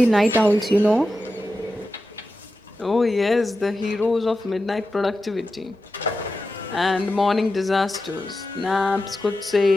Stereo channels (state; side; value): normal; both; correlation 0.91